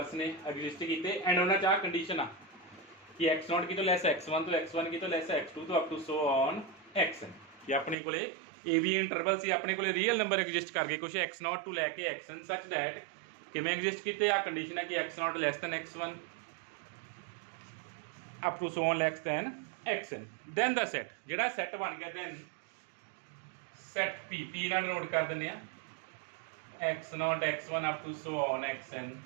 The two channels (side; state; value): left; drops out; at 8.0 s